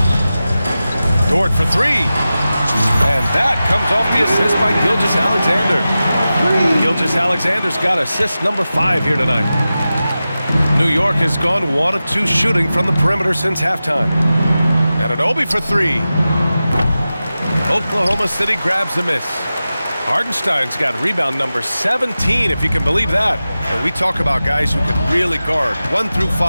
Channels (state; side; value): inverted; both; correlation -0.94